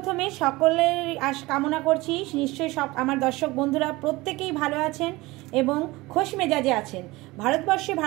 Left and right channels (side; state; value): left; quieter; 21.0 dB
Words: সকলের কামনা করছি নিশ্চয়ই সব আমার দর্শক বন্ধুরা প্রত্যেকেই ভালো আছেন এবং খোশ মেজাজে আছেন। ভারতবর্ষে